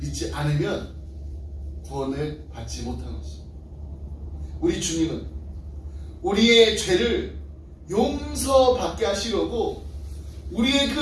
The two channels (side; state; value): both; identical; correlation 1.00